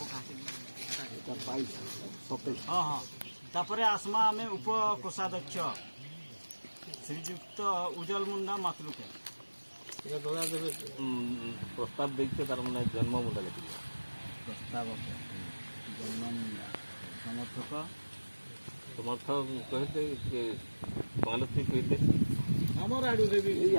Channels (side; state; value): both; inverted; correlation -1.00